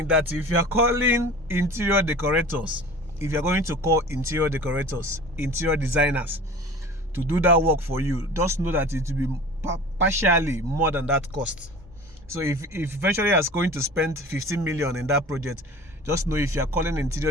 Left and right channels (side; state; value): both; normal; correlation 0.40